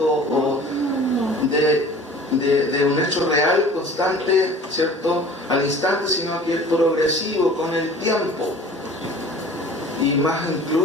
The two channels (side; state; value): both; normal; correlation 0.45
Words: o de un hecho real, constante, ¿cierto?, al instante, sino que es progresivo con el tiempo. Y más